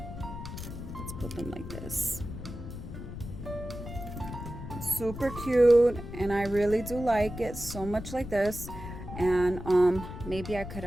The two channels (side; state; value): left; noise; rumble, 9 dB below the sound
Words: put them like this. Super cute, and I really do like it so much like this. And maybe I could